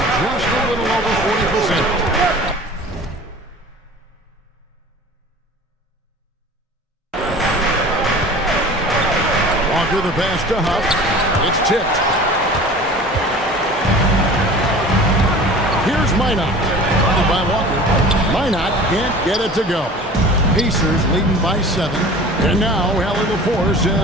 Just a little over 40%. Walker the pass to Huff. It's tipped. Here's Minot. Funded by Walker. Minot can't get it to go. Pacers leading by 7. And now Allie LaForce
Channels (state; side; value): normal; both; correlation 0.41